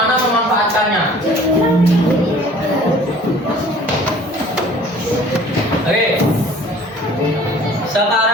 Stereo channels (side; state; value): both; normal; correlation 0.50